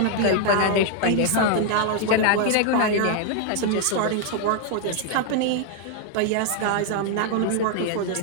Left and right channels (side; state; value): both; different; correlation 0.00